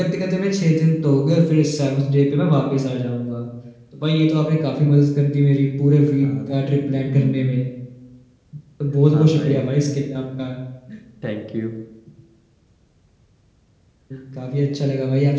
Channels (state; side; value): identical; both; correlation 1.00